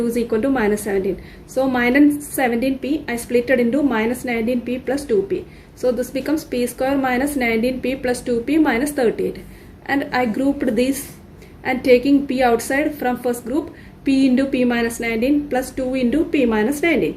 is equal to minus 17. So minus 17p I split it into minus 19p plus 2p. So this becomes p square minus 19p plus 2p minus 38, and I grouped these, and taking p outside from first group, p into p minus 19 plus 2 into p minus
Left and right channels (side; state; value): both; identical; correlation 1.00